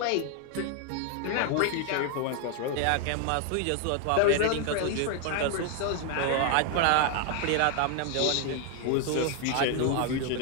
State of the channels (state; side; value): different; both; correlation 0.00